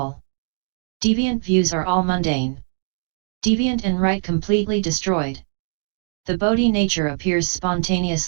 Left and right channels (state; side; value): silent; left; digital silence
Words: Deviant views are all mundane. Deviant and right completely destroyed. The Bodhi nature appears